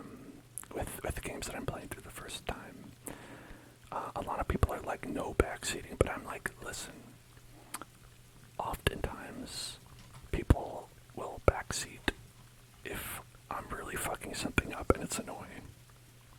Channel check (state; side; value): identical; both; correlation 1.00